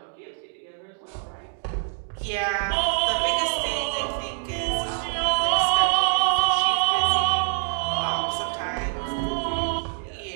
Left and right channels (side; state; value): left; silent; digital silence